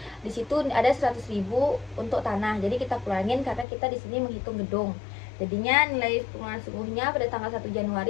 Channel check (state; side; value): drops out; right; at 3.7 s